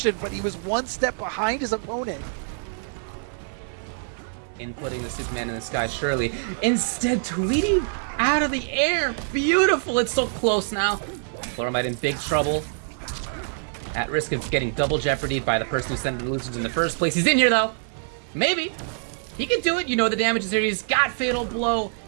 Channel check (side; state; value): left; silent; 55 dB below the other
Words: but he was one step behind his opponent. Inputting the Superman in the sky, surely. Instead, Tweedy out of the air. Beautiful. It's so close now. Pluralmite in big trouble. At risk of getting double jeopardied by the person who sent the illusions in the first place. He's in here, though. Maybe. He can do it. You know the damage is here. He's got Fatal Blow.